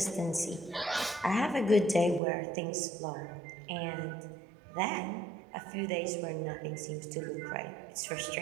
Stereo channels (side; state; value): left; drops out; at 2.2 s